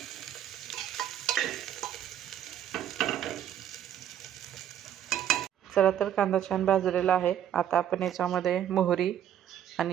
चला तर कांदा छान भाजलेला आहे। आता आपण याच्यामध्ये मोहरी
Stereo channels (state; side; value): quieter; left; 10.4 dB